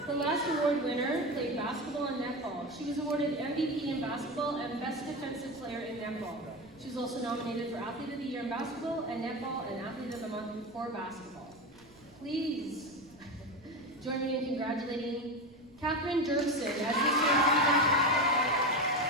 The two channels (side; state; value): right; noise; rumble, 28 dB below the sound